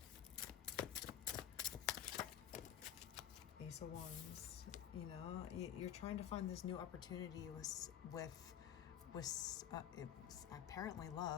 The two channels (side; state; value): right; quieter; 10.0 dB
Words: Ace of Wands, you know, you're trying to find this new opportunity with it's apparently